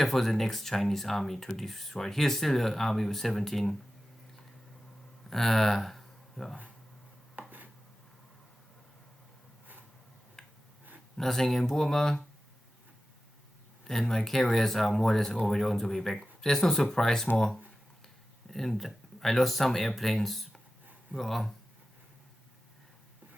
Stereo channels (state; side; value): normal; both; correlation 0.94